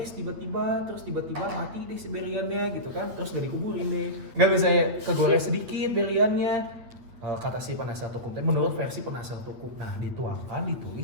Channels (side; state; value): left; late; 8.9 ms